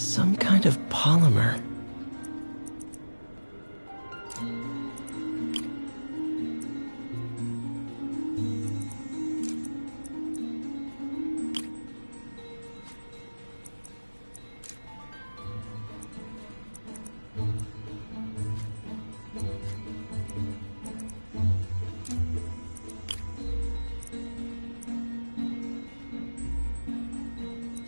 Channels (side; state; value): both; inverted; correlation -1.00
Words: kind of polymer.